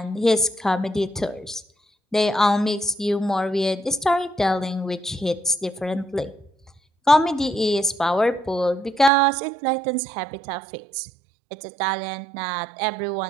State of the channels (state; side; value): drops out; left; at 9.1 s